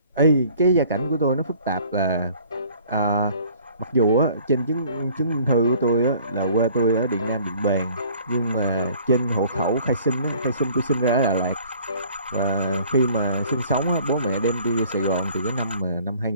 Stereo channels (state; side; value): inverted; both; correlation -0.53